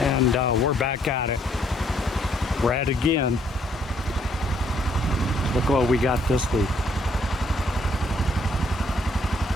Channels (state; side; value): normal; both; correlation 0.68